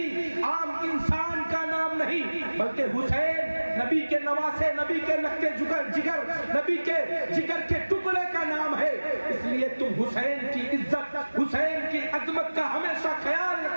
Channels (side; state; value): both; inverted; correlation -1.00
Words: عام انسان کا نام نہیں، بلکہ حسین نبی کے نواسے، نبی کے لگتے جگر، نبی کے جگر کے ٹکڑے کا نام ہے. اس لیے تم حسین کی عزت، حسین کی عظمت کا ہمیشہ خیال